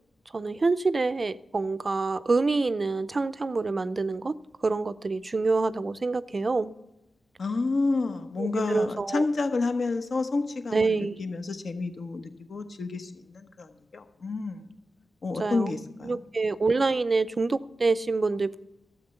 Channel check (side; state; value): both; normal; correlation 0.93